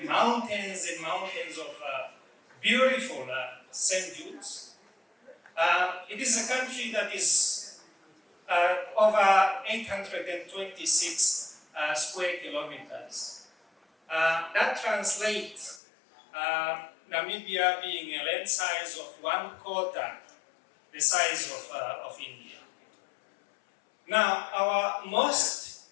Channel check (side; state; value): right; drops out; at 15.8 s